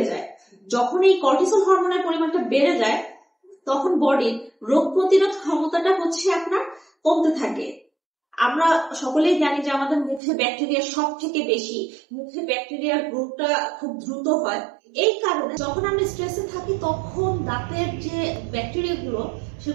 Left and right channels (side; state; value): left; drops out; at 10.2 s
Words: যায়। যখন এই কর্টিসল হরমোনের পরিমাণটা বেড়ে যায় তখন বডির রোগ প্রতিরোধ ক্ষমতাটা আপনার কমতে থাকে। আমরা সকলেই জানি যে আমাদের মুখে ব্যাকটেরিয়া সব থেকে বেশি, মুখে ব্যাকটেরিয়ার গ্রোথটা খুব দ্রুত হয়। এই কারণে যখন আমরা স্ট্রেসে থাকি তখন দাঁতের যে ব্যাকটেরিয়া গুলো